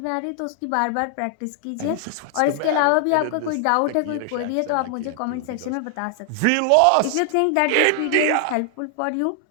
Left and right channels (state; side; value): different; both; correlation 0.00